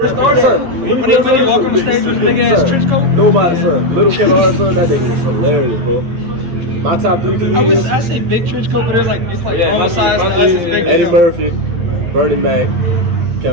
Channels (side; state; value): left; late; 11 ms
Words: son. Nobody, son. Little Kevin Hart, son, that nigga was hilarious, bro. My top 3 comedians. I say big trench coat, but it's like Yeah, all my size. Eddie Murphy, Bernie Mac,